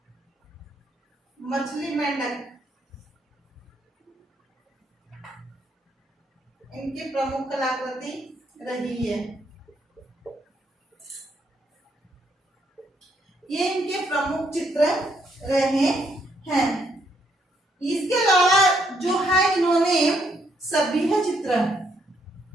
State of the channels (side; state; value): both; normal; correlation 0.73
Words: मछली, मेंढक इनकी प्रमुख कलाकृति रही है। ये इनके प्रमुख चित्र रहे हैं। इसके अलावा जो है इन्होंने सभ्य चित्र,